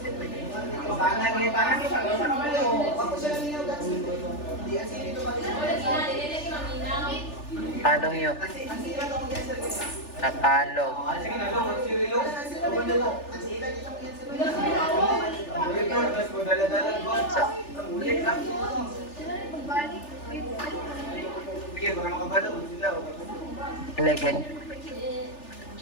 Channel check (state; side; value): late; right; 3.4 ms